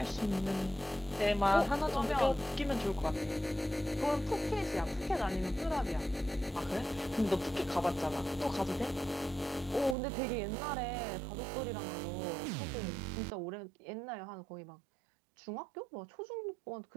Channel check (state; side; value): drops out; left; at 10.0 s